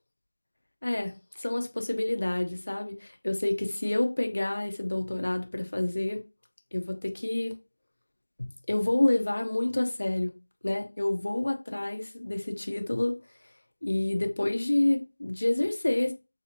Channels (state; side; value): inverted; both; correlation -1.00